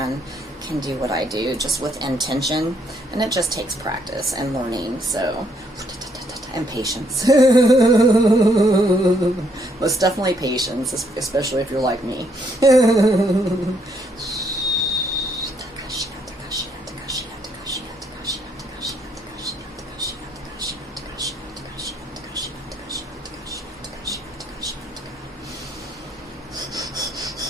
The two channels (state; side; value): normal; both; correlation 0.71